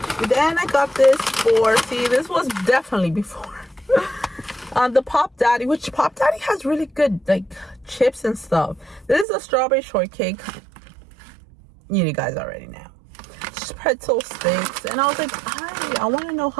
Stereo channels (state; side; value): drops out; left; at 9.2 s